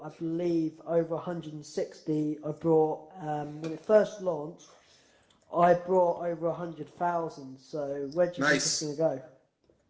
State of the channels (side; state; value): both; identical; correlation 1.00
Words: I believe, over 160. I brought when it first launched, I brought over 100,000. So where do you think it's going to